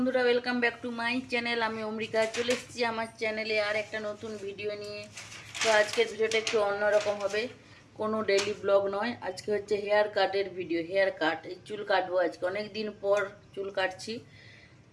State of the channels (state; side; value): identical; both; correlation 1.00